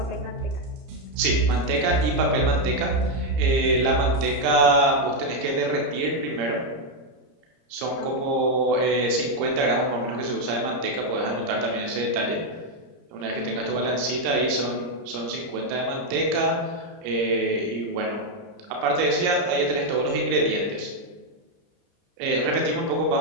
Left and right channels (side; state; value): left; late; 30 ms